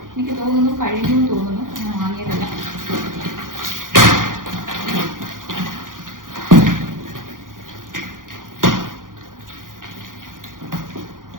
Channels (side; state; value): left; late; 0.90 ms